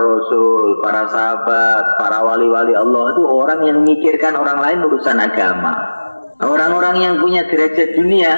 para sahabat, para wali-wali Allah itu orang yang memikirkan orang lain urusan agama. Orang-orang yang punya derajat dunia,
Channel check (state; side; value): inverted; both; correlation -1.00